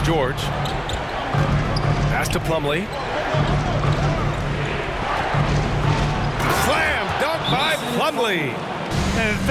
George. Pass to Plumlee. Slam dunk by Plumlee. And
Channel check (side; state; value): both; identical; correlation 1.00